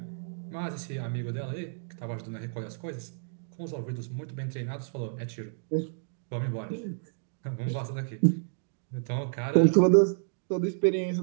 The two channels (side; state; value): left; silent; digital silence